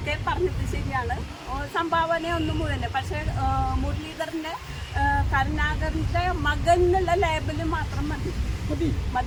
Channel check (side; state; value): both; identical; correlation 1.00